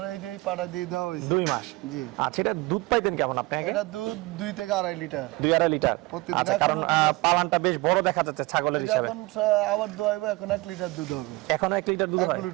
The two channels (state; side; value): quieter; left; 22.5 dB